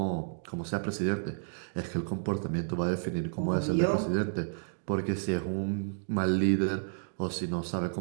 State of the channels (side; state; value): left; silent; digital silence